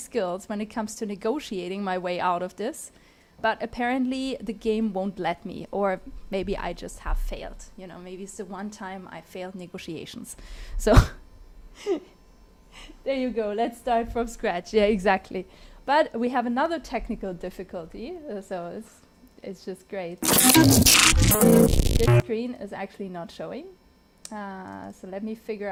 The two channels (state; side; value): identical; both; correlation 1.00